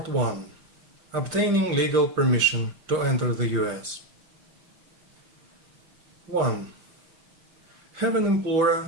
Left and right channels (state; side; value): late; left; 5.8 ms